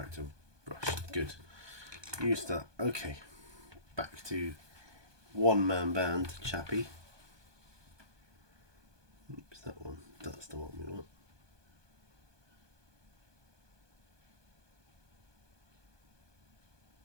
brush. Good. Use that. Okay. Back to one man band, Chappie. Oops, that one. That's the one we want.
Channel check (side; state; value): left; late; 1.2 ms